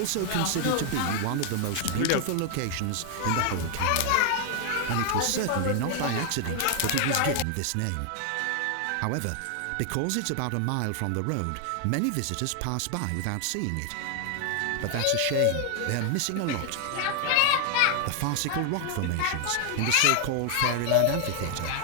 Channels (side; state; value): both; different; correlation 0.00